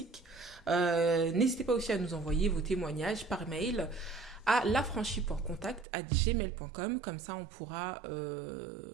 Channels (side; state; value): left; drops out; at 5.9 s